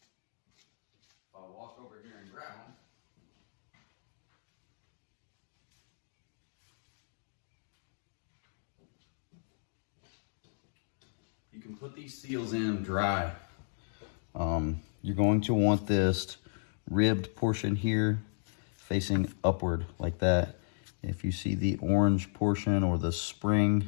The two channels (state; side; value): silent; right; digital silence